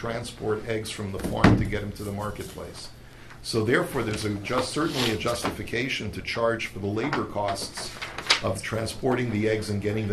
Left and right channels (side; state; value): both; identical; correlation 1.00